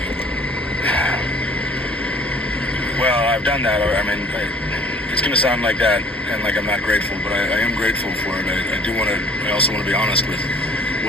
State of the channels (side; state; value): both; normal; correlation 0.54